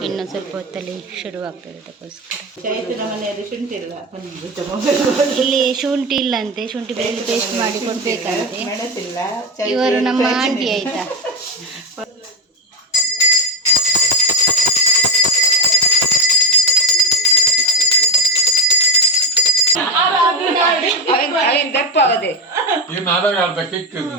ಇನ್ನು ಸ್ವಲ್ಪ ಹೊತ್ತಲ್ಲಿ ಶುರುವಾಗ್ತದೆ. ಅದಕ್ಕೋಸ್ಕರ ಇಲ್ಲಿ ಶುಂಠಿ ಇಲ್ಲಂತೆ, ಶುಂಠಿ ಬೆಳ್ಳುಳ್ಳಿ ಪೇಸ್ಟ್ ಮಾಡಿ ಕೊಡ್ಬೇಕಂತೆ. ಇವರು ನಮ್ಮ ಆಂಟಿ ಆಯ್ತಾ.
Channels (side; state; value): both; normal; correlation 0.11